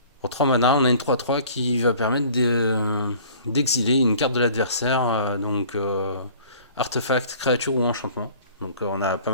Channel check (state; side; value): inverted; both; correlation -0.49